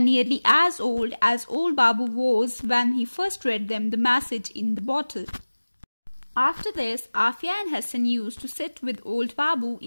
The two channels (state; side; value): inverted; both; correlation -1.00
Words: as old Babu was when he first read them the message in the bottle. After this, Afia and Hassan used to sit with old Babu